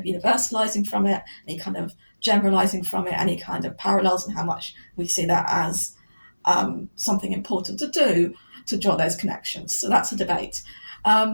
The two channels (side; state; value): both; inverted; correlation -1.00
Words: universalizing from it, any kind of generalizing from it, any kind of parallels, and how much we see that as something important to do to draw those connections. So that's a debate.